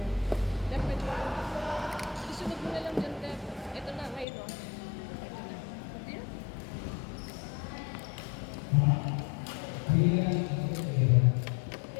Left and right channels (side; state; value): right; drops out; at 4.2 s